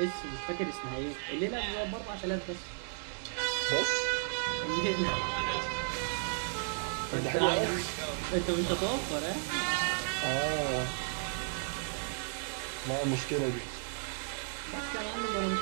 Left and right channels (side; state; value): left; silent; digital silence